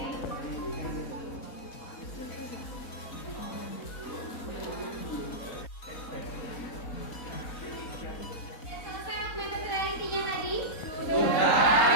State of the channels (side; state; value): right; late; 4.1 ms